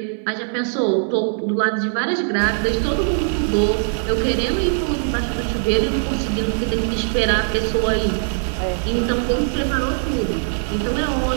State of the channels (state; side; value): silent; left; 60 dB below the other